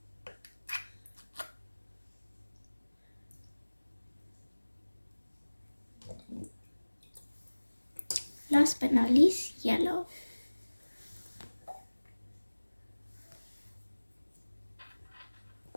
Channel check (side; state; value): both; inverted; correlation -1.00